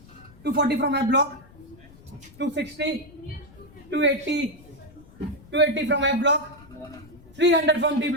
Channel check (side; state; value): left; noise; rumble, 23 dB below the sound